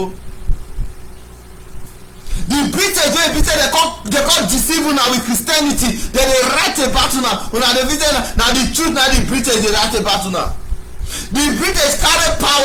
The British wey be say dem come deceive una with Christianity, dem dey write about una dey visit na the truth na the British dey write about una. The British carry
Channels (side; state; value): both; identical; correlation 1.00